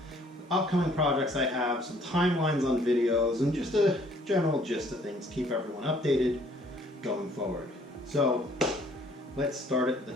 upcoming projects I have, some timelines on videos, and just a general gist of things. Keep everyone updated going forward. So let's start at the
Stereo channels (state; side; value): normal; both; correlation 0.60